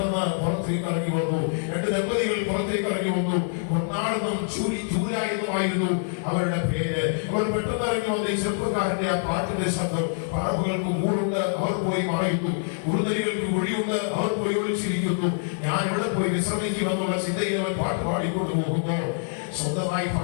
പുറത്തേക്ക് ഇറങ്ങി വന്നു. 2 ദമ്പതികൾ പുറത്തേക്ക് ഇറങ്ങി വന്നു. കൊണ്ടാണെന്നും ചൂരായെന്നുമായിരുന്നു അവരുടെ പേര്. അവർ പെട്ടെന്ന് ഇറങ്ങി വന്ന ഈ ചെറുപ്പക്കാരന്റെ ആ പാട്ടിന്റെ ശബ്ദം, പറവുകൾക്ക് കൂടുണ്ട്, അവർ പോയി മറയുന്നു. കുറുനരികൾക്ക് കുഴിയുണ്ട്, അവർ പോയി ഒളിച്ചിരിക്കുന്നു. ഞാൻ ഇവിടെ പോയി വിശ്രമിക്കുമെന്നുള്ള ചിന്തയിൽ അവൻ പാട്ട് പാടിക്കൊണ്ട് പോകുമ്പോൾ സ്വന്തമായി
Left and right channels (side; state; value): right; silent; digital silence